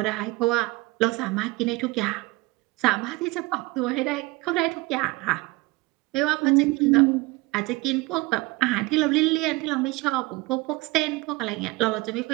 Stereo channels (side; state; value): left; quieter; 22.6 dB